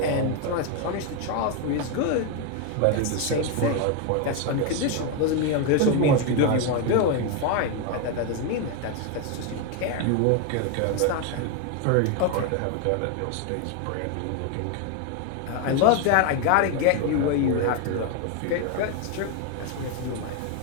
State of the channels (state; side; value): different; both; correlation 0.01